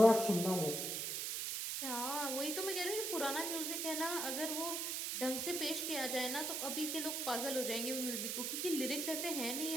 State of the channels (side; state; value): right; noise; hiss, 1 dB below the sound